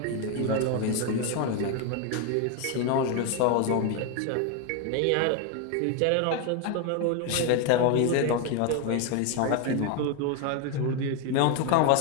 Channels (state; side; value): different; both; correlation 0.01